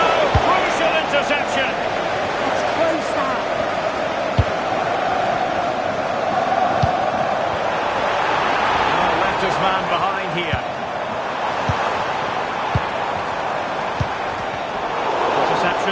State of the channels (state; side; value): identical; both; correlation 1.00